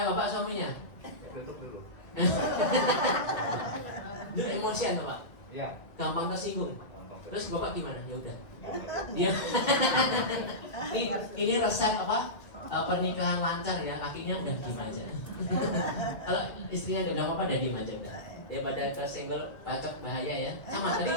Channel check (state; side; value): late; right; 2.0 ms